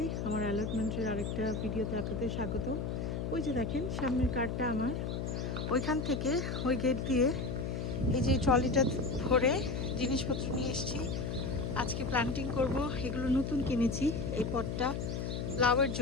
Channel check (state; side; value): noise; left; hum, 3 dB below the sound